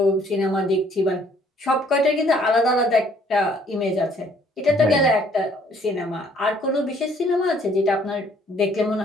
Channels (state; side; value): normal; both; correlation 0.61